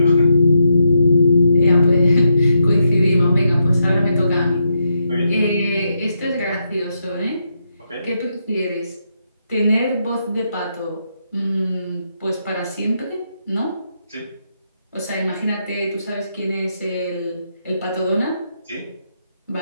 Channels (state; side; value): inverted; both; correlation -0.81